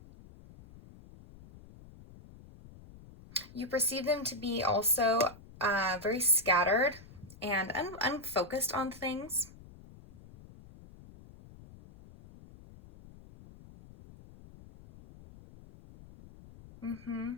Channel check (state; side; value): noise; left; rumble, 20 dB below the sound